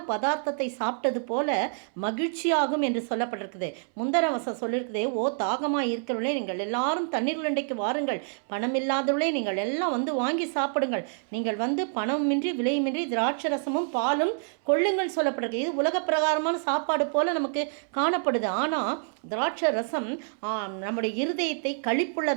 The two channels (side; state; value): left; silent; 60 dB below the other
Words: பதார்த்தத்தை சாப்பிட்டது போல மகிழ்ச்சியாகும் என்று சொல்லப்பட்டிருக்குது. முந்தர வசம் சொல்லியிருக்குது, ஓ தாகமாக இருக்கிறவர்களே நீங்கள் எல்லாரும் தண்ணீர் உருண்டைக்கு வாருங்கள், பணம் இல்லாதவர்களே நீங்கள் எல்லாம் வந்து வாங்கி சாப்பிடுங்கள், நீங்கள் வந்து பணமின்றி விலையுமின்றி திராட்சை ரசமும் பாலும் கொள்ளுங்கள் சொல்லப்பட்டிருக்கு. இது உலக பிரகாரமான சாப்பாடு போல நமக்கு காணப்படுது. ஆனால் திராட்சை ரசம் நம்முடைய இருதயத்தை